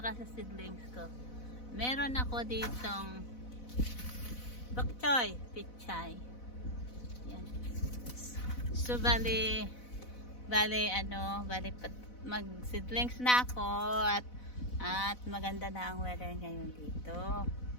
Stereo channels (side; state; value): right; late; 4.0 ms